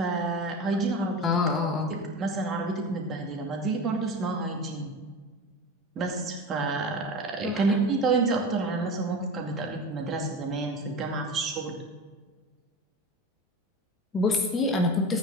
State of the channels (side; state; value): both; normal; correlation 0.29